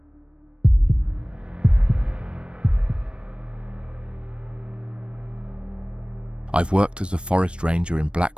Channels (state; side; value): late; left; 0.058 ms